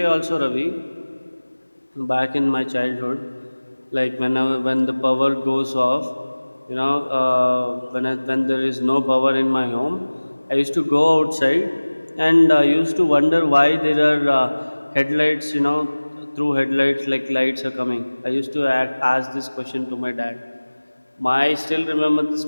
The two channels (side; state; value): both; inverted; correlation -1.00